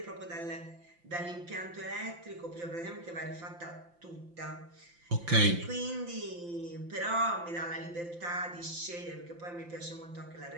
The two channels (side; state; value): left; late; 5.8 ms